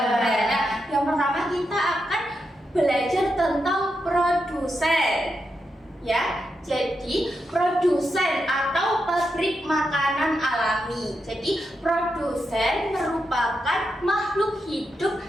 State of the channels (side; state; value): both; normal; correlation 0.85